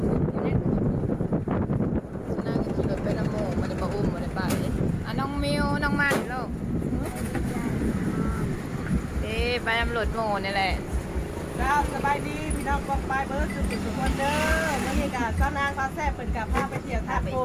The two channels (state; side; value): identical; both; correlation 1.00